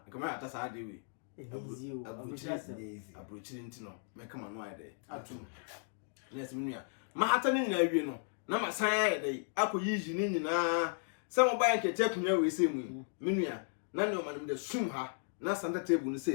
come out as I do. A bruchilintino, make come on my day. At 2. Yes, Minia. Mahatan, you know. Na masaya dey akoyi ni nyina some bank check nya we say mu menua na ne o man me sum ha na sanda table no say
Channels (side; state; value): right; silent; digital silence